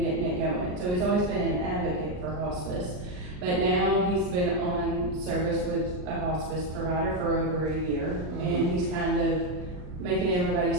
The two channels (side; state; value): left; late; 39 ms